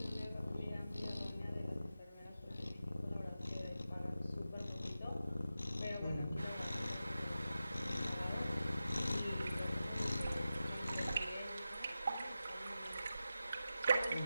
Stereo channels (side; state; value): both; inverted; correlation -0.92